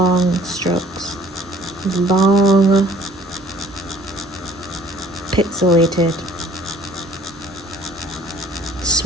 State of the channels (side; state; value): both; normal; correlation 0.55